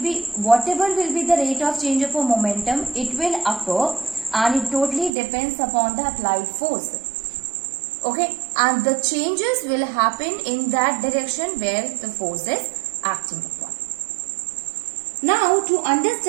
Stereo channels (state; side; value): drops out; left; at 5.1 s